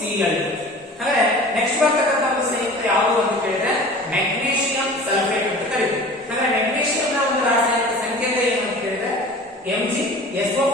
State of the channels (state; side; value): normal; both; correlation 0.41